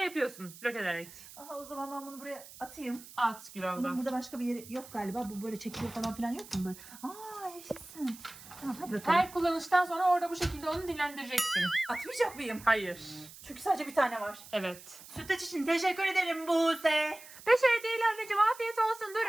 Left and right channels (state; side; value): noise; right; hiss, 18 dB below the sound